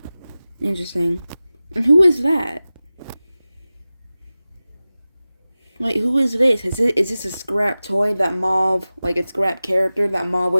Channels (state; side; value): inverted; both; correlation -0.97